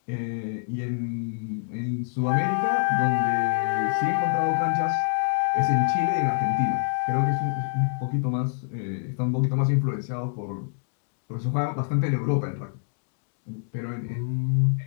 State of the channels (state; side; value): silent; right; digital silence